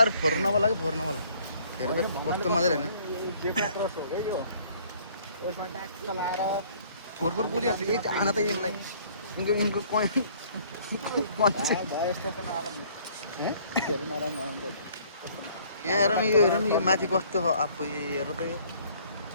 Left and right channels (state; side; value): inverted; both; correlation -0.58